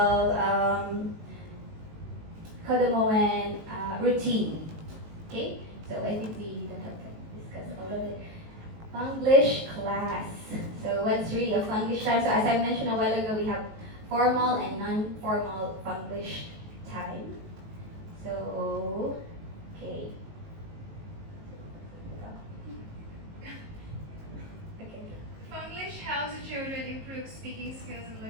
kodomoen routine. Okay, so I think we don't have to discuss all of it. English class. So what's really a English time? So as I mentioned a while ago, we have formal and non-formal English time. So, okay. English helps the children improve speaking skills and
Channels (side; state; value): left; late; 19 ms